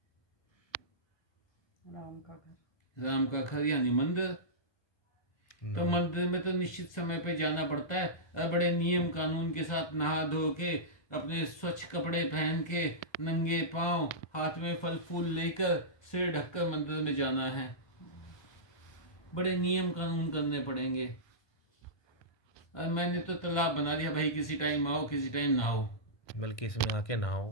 राम का घर, राम का घर यानी मंदिर। तो मंदिर में तो निश्चित समय पे जाना पड़ता है और बड़े नियम कानून के साथ नहा धो के अपने स्वच्छ कपड़े पहन के नंगे पांव हाथ में फल फूल लेकर सिर ढककर मंदिर में जाना है। बड़े नियम कानून करने पड़ेंगे। और मैंने तो तालाब बना दिया, भाई किसी टाइम आओ किसी टाइम ना आओ। बल्कि इसमें आके नहाओ,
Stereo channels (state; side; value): late; right; 1.2 ms